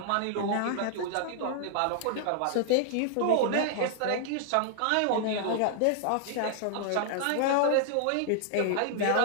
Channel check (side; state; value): both; different; correlation -0.01